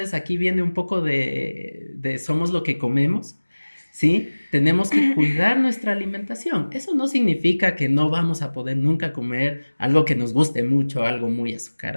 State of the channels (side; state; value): both; inverted; correlation -1.00